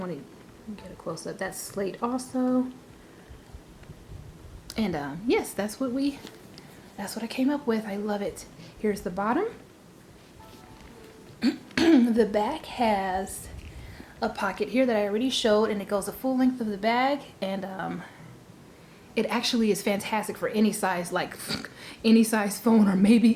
to get a close up. That's slate also. And yes, that's what I came up with. I love it. Here's the bottom. The back has a pocket here that I already showed, and it goes the full length of the bag, and it actually is fantastic for any size, like any size phone, or maybe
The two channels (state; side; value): identical; both; correlation 1.00